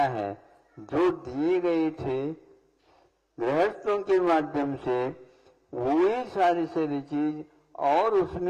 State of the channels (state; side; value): identical; both; correlation 1.00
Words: जो दिए गए थे गृहस्थों के माध्यम से, वही सारी सारी चीज और